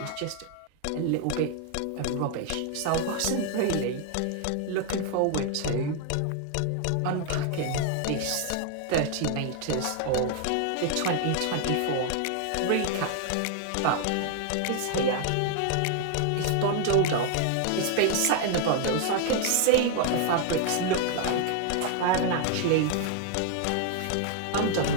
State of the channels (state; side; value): different; both; correlation 0.00